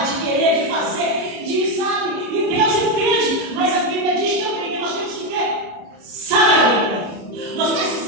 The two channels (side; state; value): left; late; 30 ms